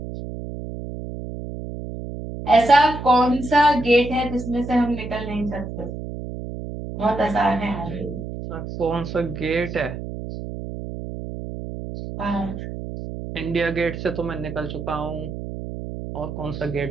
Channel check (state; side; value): noise; right; hum, 8 dB below the sound